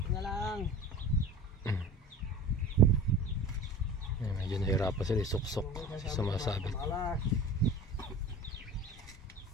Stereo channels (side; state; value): both; normal; correlation 0.38